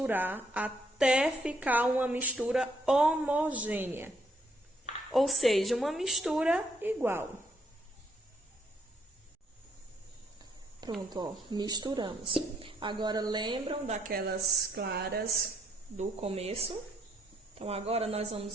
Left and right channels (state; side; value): normal; both; correlation 0.71